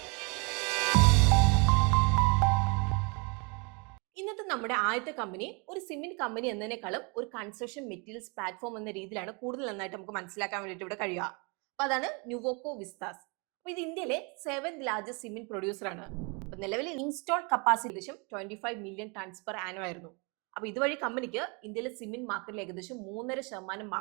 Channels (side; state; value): left; quieter; 32.2 dB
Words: ഇന്നത്തെ നമ്മുടെ ആദ്യത്തെ കമ്പനി ഒരു സിമെന്റ് കമ്പനി എന്നതിനേക്കാളും ഒരു കൺസ്ട്രക്ഷൻ മെറ്റീരിയൽസ് പ്ലാറ്റ്ഫോം എന്ന രീതിയിലാണ് കൂടുതൽ നന്നായിട്ട് നമുക്ക് മനസ്സിലാക്കാൻ വേണ്ടിയിട്ട് ഇവിടെ കഴിയുക. അപ്പൊ അതാണ് ന്യൂവോക്കോ വിസ്താസ്. അപ്പൊ ഇത് ഇന്ത്യയിലെ 7th ലാർജസ്റ്റ് സിമെന്റ് പ്രൊഡ്യൂസർ ആണ്. അപ്പൊ നിലവിൽ ഇൻസ്റ്റാൾഡ് കപ്പാസിറ്റി ഏകദേശം 25 മില്യൺ ടൺസ് പെർ ആനം ആയിരുന്നു. അപ്പൊ ഇതുവഴി കമ്പനിക്ക് ഇന്ത്യയിലെ സിമെന്റ് മാർക്കറ്റിൽ ഏകദേശം 3.5%